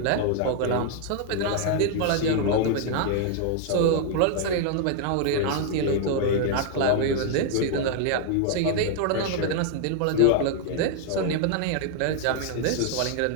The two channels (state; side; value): different; both; correlation 0.00